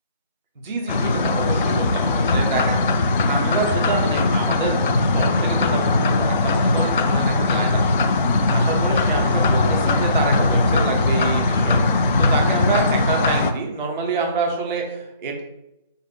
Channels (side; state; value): both; inverted; correlation -0.58